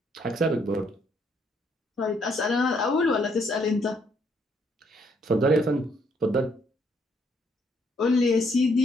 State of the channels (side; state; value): both; normal; correlation 0.70